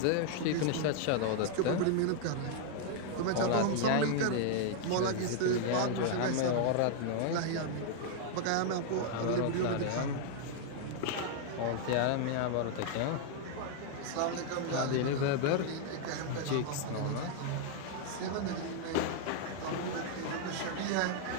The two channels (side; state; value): both; different; correlation 0.00